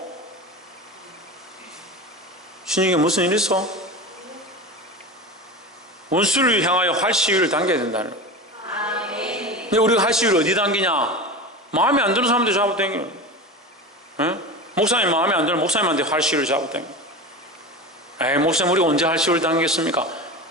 신에게 무슨 일 있어? 원수를 향하여 할 시위를 당겨야 된다는 거예요. 근데 우리가 할 시위를 어디 당기냐? 마음에 안 드는 사람한테 잡아당기는 거예요. 목사님 마음에 안 드는 목사님한테 할 시위를 잡아당기는 거예요. 목사님 우리가 언제 할 시위를 당기겠습니까?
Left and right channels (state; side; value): normal; both; correlation 0.27